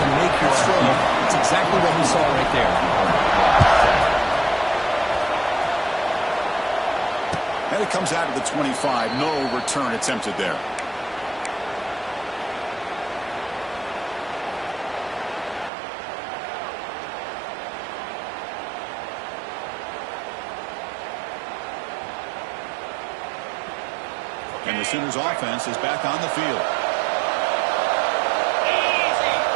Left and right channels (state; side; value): drops out; left; at 15.7 s